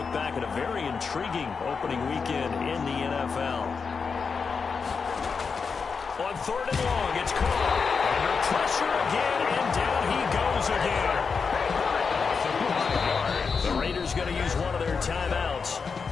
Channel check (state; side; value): quieter; right; 5.4 dB